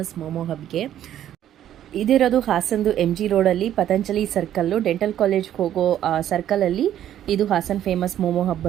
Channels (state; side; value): quieter; left; 11.3 dB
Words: ಮೋಮೋ ಹಬ್ಗೆ. ಇದಿರೋದು ಹಾಸನ್ದು MG ರೋಡಲ್ಲಿ ಪತಂಜಲಿ ಸರ್ಕಲ್ಲು, ಡೆಂಟಲ್ ಕಾಲೇಜ್ಗೆ ಹೋಗೋ ಸರ್ಕಲಲ್ಲಿ ಇದು ಹಾಸನ್ ಫೇಮಸ್ ಮೋಮೋ ಹಬ್